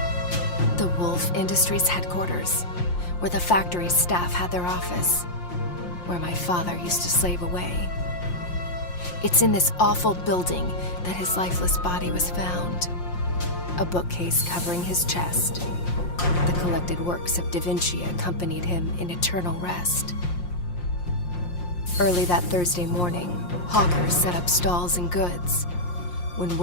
The Woolfe Industries headquarters, where the factory's staff had their office, where my father used to slave away. It's in this awful building that his lifeless body was found. A bookcase covering his chest. The collected works of Da Vinci accompanied him in eternal rest. Early that Thursday morning, hawkers set up stalls and goods. When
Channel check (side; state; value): right; late; 5.6 ms